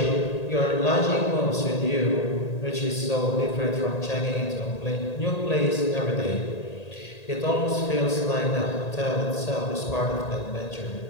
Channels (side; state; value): right; late; 1.8 ms